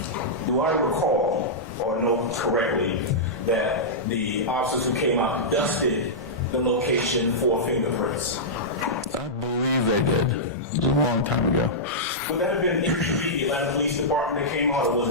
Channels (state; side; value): normal; both; correlation -0.12